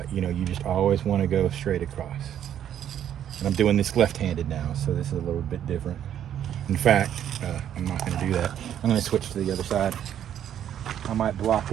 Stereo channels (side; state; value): left; quieter; 10.2 dB